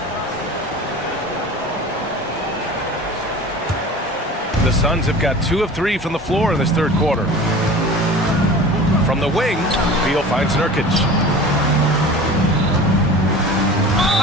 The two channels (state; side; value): normal; both; correlation 0.38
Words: The Suns have got 2 of 3 from the floor in this third quarter. From the wing, Beal finds Nurkic.